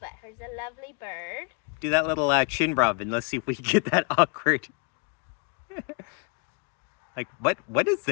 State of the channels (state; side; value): quieter; right; 34.4 dB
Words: her's a lovely bird. Do that little chin rub and let's see if we can get that awkward. Like, what is